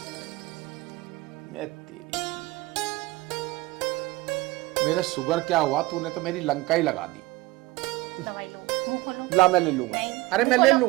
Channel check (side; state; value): left; quieter; 20.1 dB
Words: मैं तेरी, मेरा शुगर क्या हुआ, तूने तो मेरी लंका ही लगा दी। दवाई लो, मुंह खोलो। ला, मैं ले लूंगा। नहीं, अरे मैं मुंह ले खोलो,